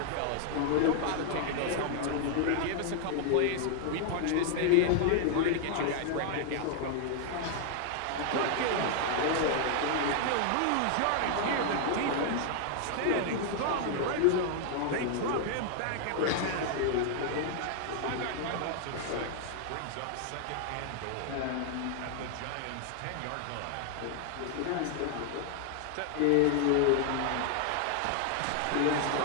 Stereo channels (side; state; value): both; different; correlation 0.00